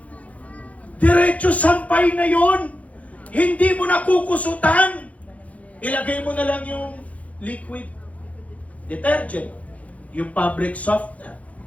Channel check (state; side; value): late; right; 0.068 ms